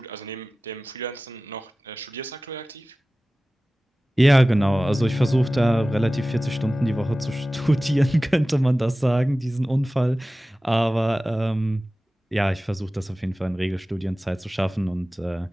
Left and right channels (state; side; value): normal; both; correlation 0.97